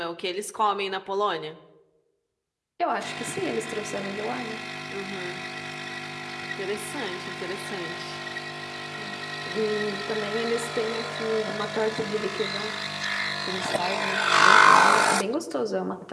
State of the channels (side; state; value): both; identical; correlation 1.00